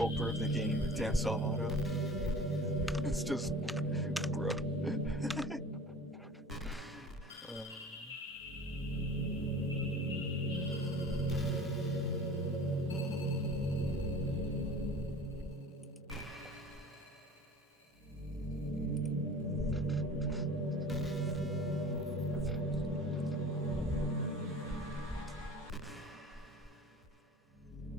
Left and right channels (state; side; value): normal; both; correlation 0.41